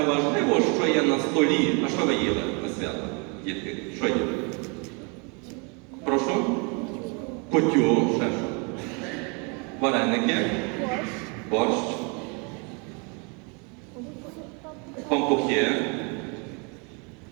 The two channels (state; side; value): quieter; left; 33.5 dB